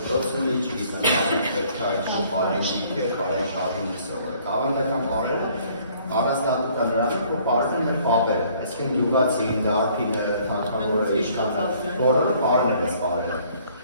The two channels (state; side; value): inverted; both; correlation -0.60